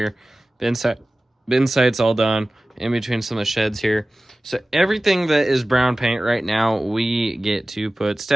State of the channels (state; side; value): normal; both; correlation 0.97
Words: Bin site's all done, in between some of the sheds here. So everything that is brown paint right now, we get to put